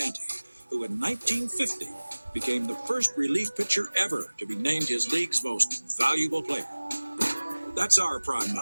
who in 1950 became the first relief pitcher ever to be named his league's most valuable player. That's our Prime 9.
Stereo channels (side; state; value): both; inverted; correlation -1.00